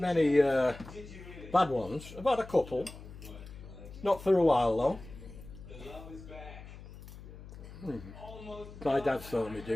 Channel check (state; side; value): noise; left; hum, 15 dB below the sound